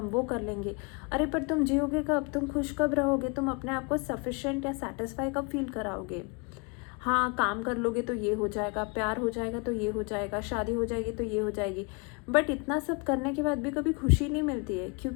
वो कर लेंगे। अरे पर तुम जियोगे कब, तुम खुश कब रहोगे, तुम अपने आप को सफिशेंट या सेटिस्फाई कब फील कराओगे? हाँ, काम कर लोगे तो ये हो जाएगा, प्यार हो जाएगा तो ये हो जाएगा, शादी हो जाएगी तो ये हो जाएगी, बट इतना सब करने के बाद भी कभी खुशी नहीं मिलती है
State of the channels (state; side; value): quieter; right; 31.5 dB